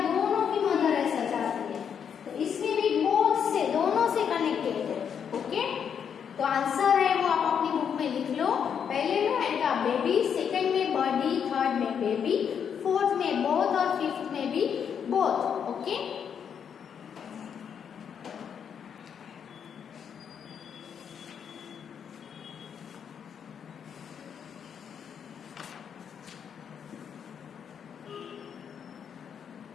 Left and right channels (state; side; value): quieter; right; 7.7 dB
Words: दोनों की मदर ऐसा चाहती है, तो इसमें भी बोथ से, दोनों से कनेक्टेड है। ओके, तो आंसर है वो आप अपनी बुक में लिख लो। पहले में आएगा बेबी, सेकंड में बर्डी, थर्ड में बेबी, फोर्थ में बोथ और फिफ्थ में भी बोथ। ओके,